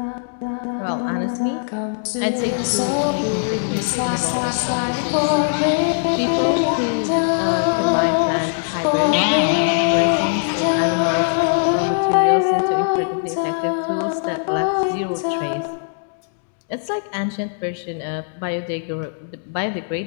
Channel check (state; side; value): silent; right; digital silence